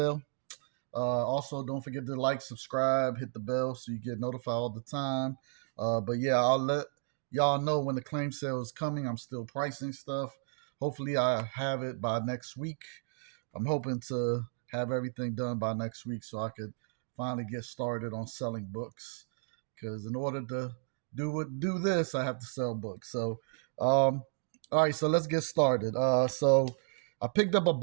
Also, don't forget to like, subscribe, hit the bell so you get notified all the time. But yeah, I'll let y'all know when the claim sale is coming. I'm still pricing stuff. Hopefully, I have it by next week. I'm hoping to have everything done by next week so I could finally get started on selling books. Because in order to do this, I have to sell books. All right, so let's get started. So I picked up a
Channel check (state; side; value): silent; left; digital silence